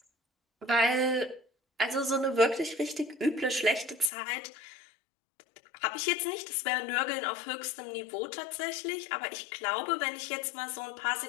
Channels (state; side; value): drops out; right; at 4.1 s